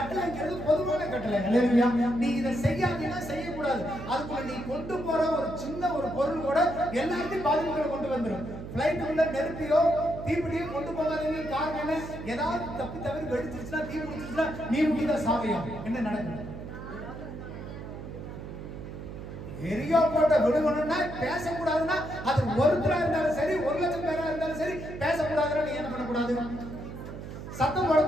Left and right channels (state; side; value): noise; right; hum, 10 dB below the sound